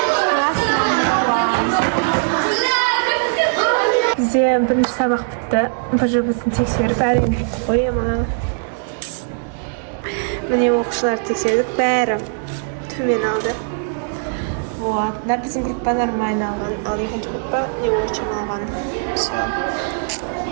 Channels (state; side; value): silent; left; 60 dB below the other